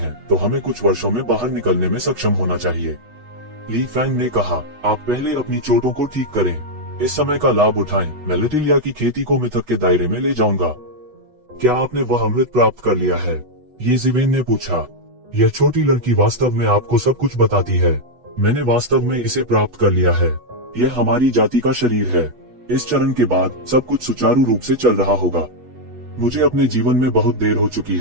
तो हमें कुछ वर्षों में बाहर निकलने में सक्षम होना चाहिए। ली फैंग ने कहा, आप पहले अपनी चोटों को ठीक करें, इस समय का लाभ उठाएं। मैं लिटिलिया की खेती को मिथक के दायरे में ले जाऊंगा। क्या आपने वह अमृत प्राप्त कर लिया है? ये ज़िवेन ने पूछा। यह छोटी लड़की वास्तव में आपको सब कुछ बताती है। मैंने वास्तव में इसे प्राप्त कर लिया है। यह हमारी जाति का शरीर है। इस चरण के बाद सब कुछ सुचारू रूप से चल रहा होगा। मुझे अपने जीवन में बहुत देर हो चुकी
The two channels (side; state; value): left; late; 8.2 ms